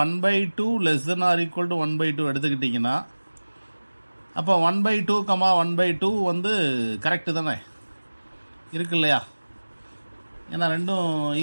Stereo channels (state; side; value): inverted; both; correlation -1.00